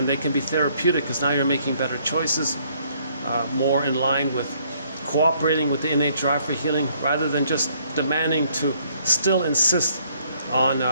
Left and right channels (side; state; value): both; inverted; correlation -0.66